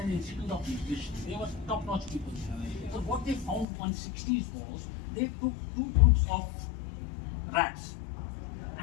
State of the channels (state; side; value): drops out; right; at 3.7 s